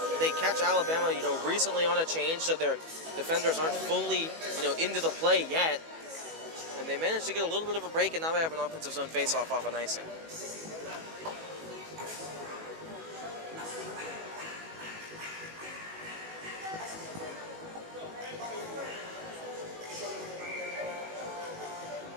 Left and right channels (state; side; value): late; left; 18 ms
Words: Alabama, you know, recently on a change, so their defenders aren't fully, you know, into the play yet. And they managed to get a little bit of a break, and now they have an offensive zone face-off off an icing.